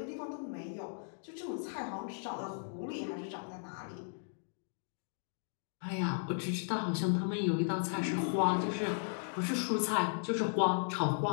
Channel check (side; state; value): right; silent; digital silence